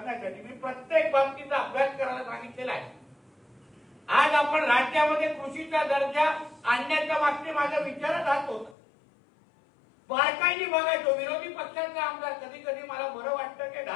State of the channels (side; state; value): right; drops out; at 8.8 s